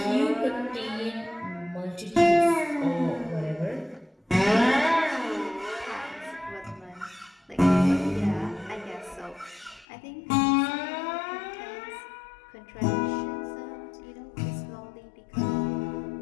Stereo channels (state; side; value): drops out; right; at 9.9 s